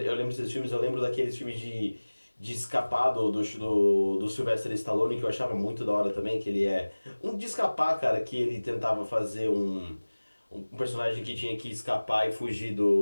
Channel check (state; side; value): inverted; both; correlation -1.00